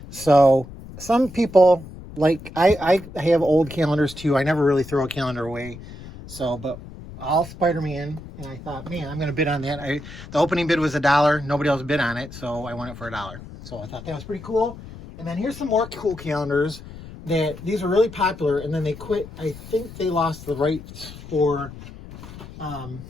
So some people, like, I have old calendars too. I never really throw a calendar away. So, but all Spider-Man, and I thought, man, I'm going to bid on that. The opening bid was $1. Nobody else bid on it, so I won it for $1. So I thought that was pretty cool. And then here's some more cool calendars that these are really popular, and then they quit. I think they lost the rights for, I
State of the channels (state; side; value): noise; left; rumble, 15 dB below the sound